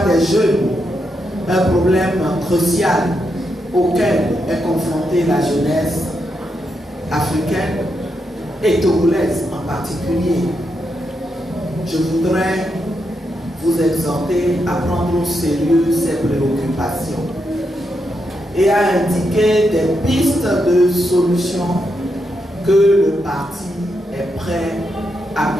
des jeunes, un problème crucial auquel est confrontée la jeunesse africaine et togolaise en particulier? Je voudrais vous exhorter à prendre au sérieux ces préoccupations et à indiquer des pistes de solutions que le parti est prêt à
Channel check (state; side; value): normal; both; correlation 0.83